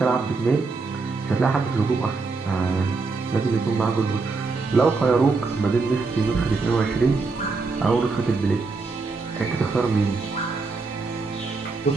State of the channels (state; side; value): quieter; left; 4.0 dB